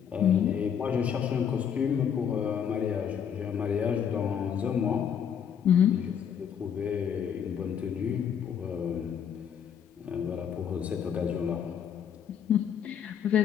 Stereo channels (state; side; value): quieter; right; 8.1 dB